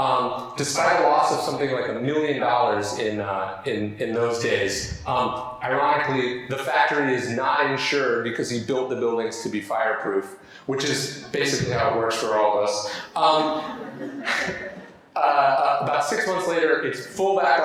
despite a loss of something like $1 million in those days. Ironically, the factory is not insured because he built the buildings to be fireproof, which is basically how it works for all of us. About 6 months later, it's full back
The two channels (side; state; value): both; identical; correlation 1.00